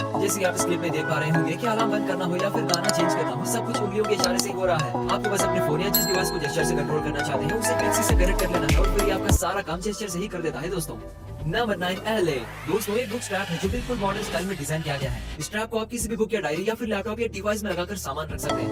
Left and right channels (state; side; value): identical; both; correlation 1.00